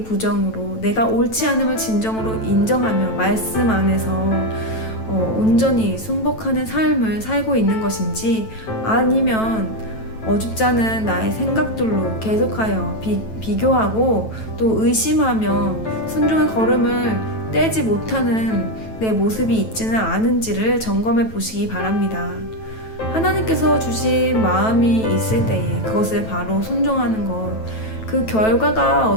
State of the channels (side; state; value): right; late; 9.1 ms